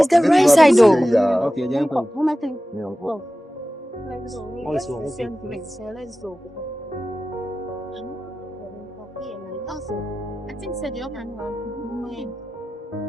the right side, though. Okay, yeah, uncle. Let's go. All is well. Let's go. I think said you can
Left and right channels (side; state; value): both; normal; correlation 0.95